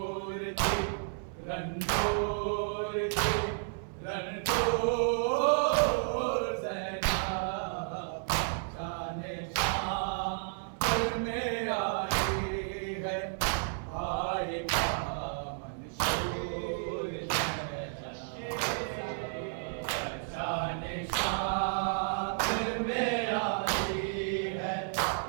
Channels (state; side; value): silent; left; 56 dB below the other